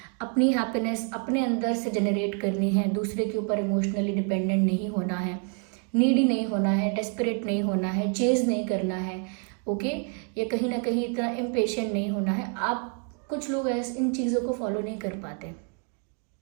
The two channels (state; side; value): quieter; left; 40.0 dB